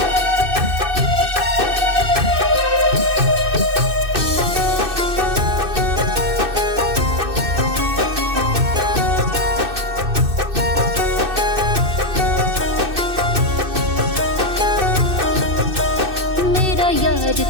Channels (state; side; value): late; left; 2.6 ms